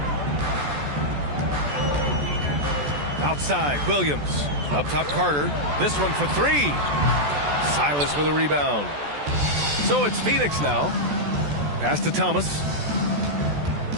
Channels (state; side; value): late; left; 14 ms